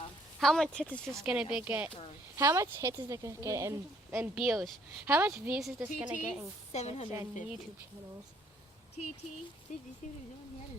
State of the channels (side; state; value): both; normal; correlation 0.64